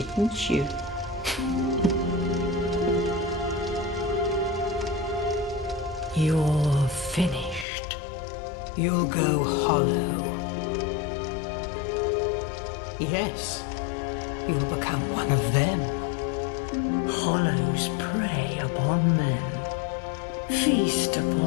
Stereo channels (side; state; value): right; drops out; at 7.7 s